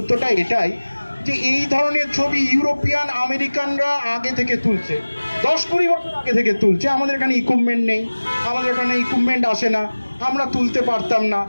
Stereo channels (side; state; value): both; inverted; correlation -1.00